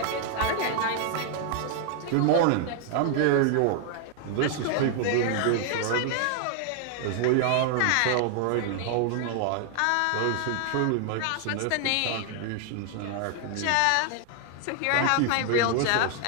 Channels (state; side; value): different; both; correlation 0.00